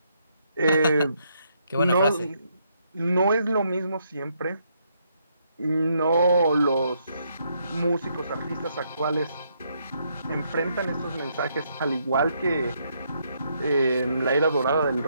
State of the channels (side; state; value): both; inverted; correlation -0.74